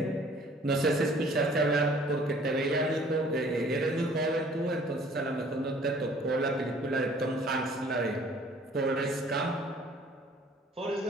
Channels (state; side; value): normal; both; correlation 0.54